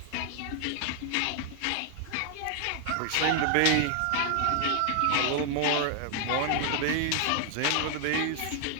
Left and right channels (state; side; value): different; both; correlation 0.00